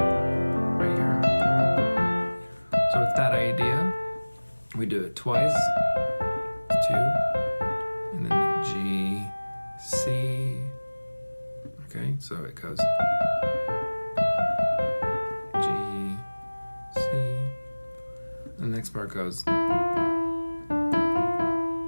right here. So with that idea, we do it twice, 2, and then G, C. Okay, so it goes G, C. The next part goes.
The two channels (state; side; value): inverted; both; correlation -1.00